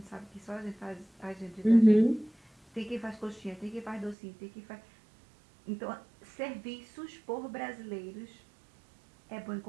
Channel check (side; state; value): left; drops out; at 4.2 s